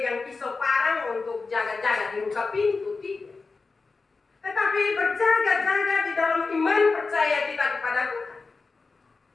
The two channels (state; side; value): quieter; right; 4.1 dB